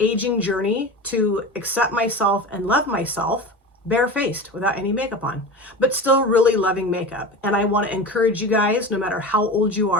journey to accept myself and love myself barefaced without any makeup on, but still really loving makeup. And I want to encourage you guys, no matter how old you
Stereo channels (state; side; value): normal; both; correlation 0.29